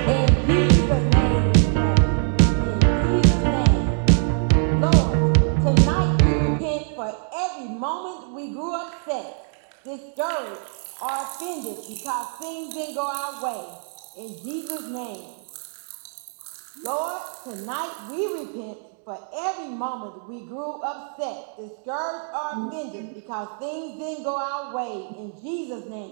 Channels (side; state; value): left; silent; 57 dB below the other